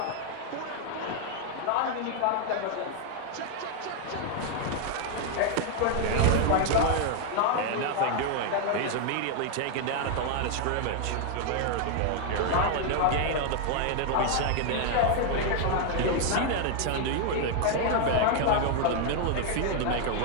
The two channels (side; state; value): both; different; correlation 0.00